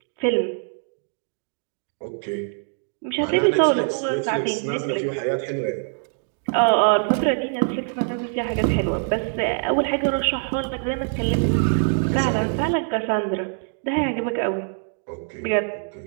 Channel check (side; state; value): left; silent; 59 dB below the other